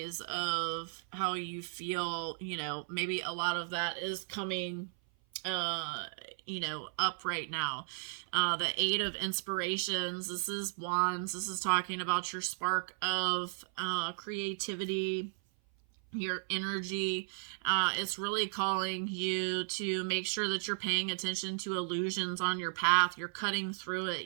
of how you feel. You know, maybe a lot of that is coming you know, up right now. The Eight of Inspirations. This is Wands. This is talking about your spark of creativity, your energy. It's really calling you to make sure that you're paying attention to illusions on your path. You're cutting through it.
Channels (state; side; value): silent; left; 55 dB below the other